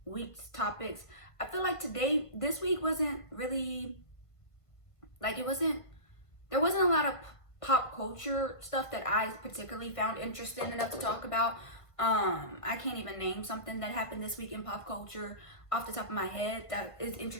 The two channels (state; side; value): late; right; 1.5 ms